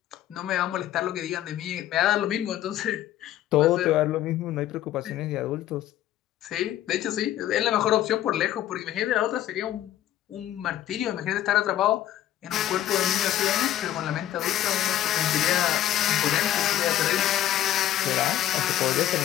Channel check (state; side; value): quieter; right; 12.7 dB